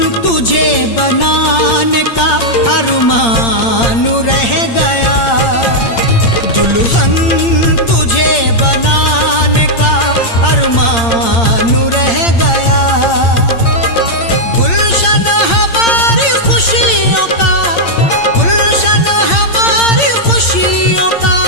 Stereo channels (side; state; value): right; late; 8.7 ms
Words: तुझे बनाने का अरमान रह गया। दुल्हन तुझे बनाने का अरमान रह गया। गुलशन हमारी खुशियों का, गुलशन हमारी खुशियों का